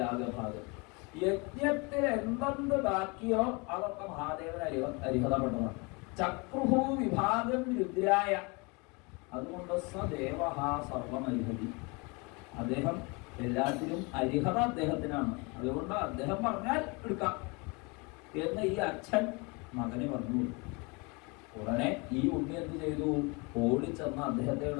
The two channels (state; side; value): quieter; right; 29.0 dB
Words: യജ്ഞത്തിൽ എന്തെന്ത് ബാക്കിയോ അതൊക്കെ മഹാദേവന് അരിഹതപ്പെട്ടതാണ്. ചക്രുഹു വിഭാഗം രുദ്രായ, അതുകൊണ്ട് സദേവ സർവമരിഹതി. അദ്ദേഹം എല്ലാത്തിനും അരിഹത അദ്ദേഹത്തിനാണ്. അതുകൊണ്ട് അദ്ദേഹം പറഞ്ഞാൽ എടുക്കാം എന്ന് ഈ അച്ഛൻ മകന് പറഞ്ഞു. ഉടനെ ഈ ഉണ്ണി എന്ത് ചെയ്തു? ഓടിച്ചെന്ന്